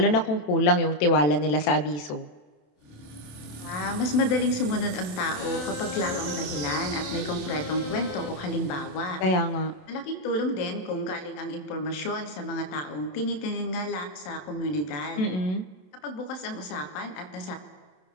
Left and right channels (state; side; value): late; right; 27 ms